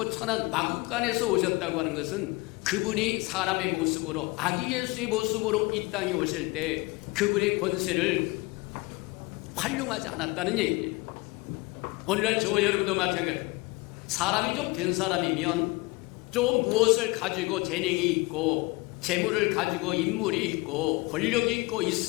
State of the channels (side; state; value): right; quieter; 24.4 dB